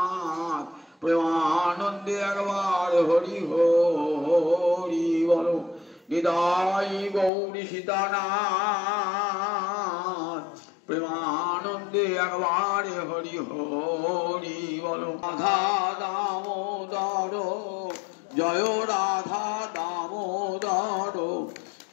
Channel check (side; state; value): right; drops out; at 7.3 s